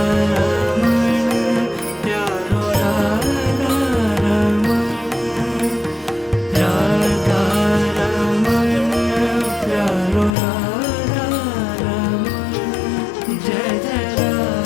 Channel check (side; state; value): right; drops out; at 10.4 s